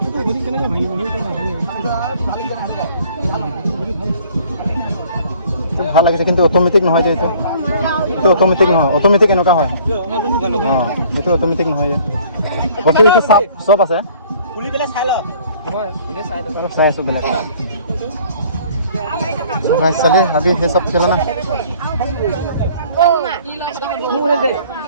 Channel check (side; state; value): both; inverted; correlation -0.54